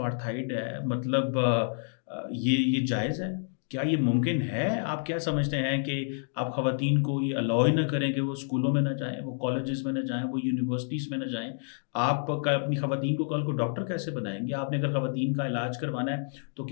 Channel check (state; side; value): silent; right; digital silence